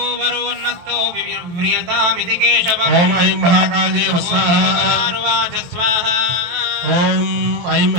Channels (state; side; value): late; left; 23 ms